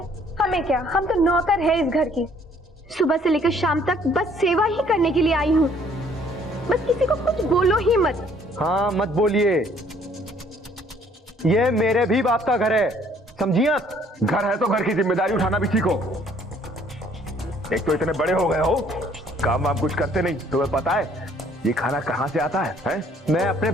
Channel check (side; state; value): both; normal; correlation 0.61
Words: हमें क्या, हम तो नौकर है इस घर की। सुबह से लेकर शाम तक बस सेवा ही करने के लिए आई हूँ। बस किसी को कुछ बोलो ही मत। हाँ मत बोलिए, ये मेरे भी बाप का घर है, समझिए आप? घर है तो घर की जिम्मेदारी उठाना भी सीखो। एक तो इतने बड़े हो गए हो, काम वाम कुछ करते नहीं। तुम्हें पता है ये खाना कहाँ से आता है? मैं अपने